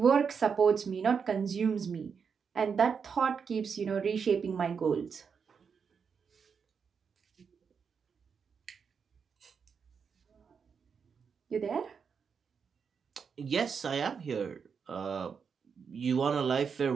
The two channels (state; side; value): quieter; left; 6.2 dB